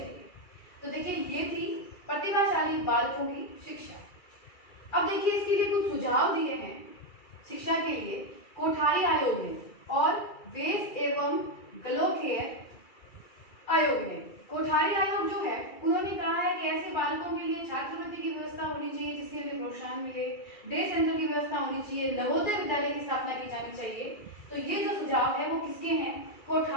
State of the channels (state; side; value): late; right; 2.3 ms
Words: तो देखिए, ये थी प्रतिभाशाली बालकों की शिक्षा। अब देखिए, इसके लिए कुछ सुझाव दिए हैं शिक्षा के लिए कोठारी आयोग ने और वेस एवं गलोखेयर आयोग ने। कोठारी आयोग जो है उन्होंने कहा है कि ऐसे बालकों के लिए छात्रवृत्ति की व्यवस्था होनी चाहिए जिससे उन्हें प्रोत्साहन मिले, डे सेंटर की व्यवस्था होनी चाहिए, नवोदय विद्यालय की स्थापना की जानी चाहिए। तो ये जो सुझाव है वो किसके हैं,